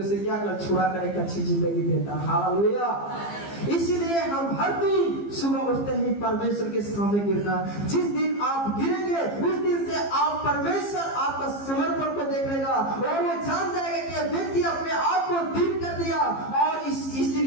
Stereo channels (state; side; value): late; right; 15 ms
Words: से क्या कर छुड़ा कर एक अच्छी जिंदगी देता। हालेलुया। इसलिए हम हर दिन सुबह उठते ही परमेश्वर के सामने गिरना। जिस दिन आप गिरेंगे उस दिन से आप परमेश्वर आपका समर्पण को देख लेगा और वो जान जाएगा कि व्यक्ति अपने आप को दीन कर दिया और